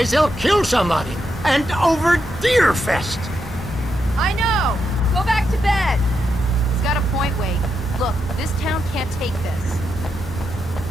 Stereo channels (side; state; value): both; normal; correlation 0.83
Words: they'll kill somebody. And over Deerfest. I know. Go back to bed. He's got a point, Wade. Look, this town can't take this.